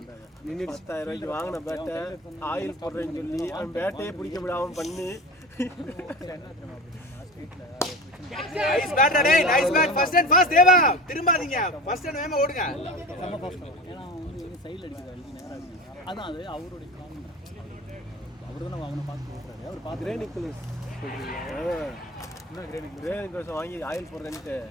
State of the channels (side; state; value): both; normal; correlation 0.32